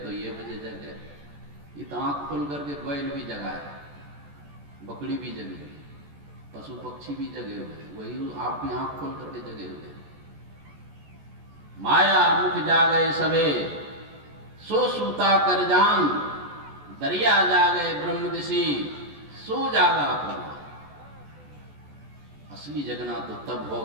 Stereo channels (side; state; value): left; late; 14 ms